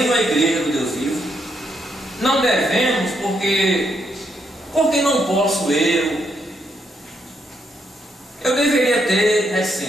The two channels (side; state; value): both; normal; correlation 0.77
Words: a igreja do Deus vivo, não devemos, porque não posso eu deveria ter